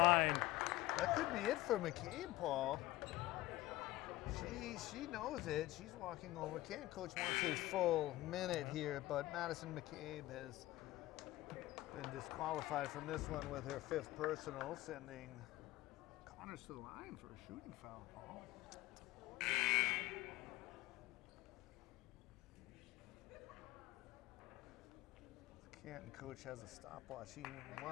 That could be it for McCabe, Paul. She knows it. She's walking over. Canton coach wants his full minute here, but Madison McCabe has been disqualified from this one with her 5th personal, sending Connors to the line for a shooting foul, Paul. Canton coach has a stopwatch. He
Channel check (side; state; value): right; quieter; 17.3 dB